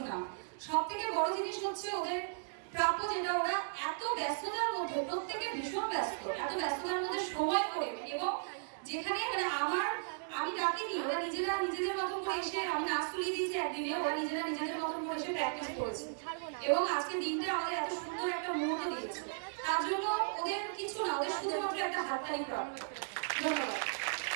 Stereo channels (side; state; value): left; silent; digital silence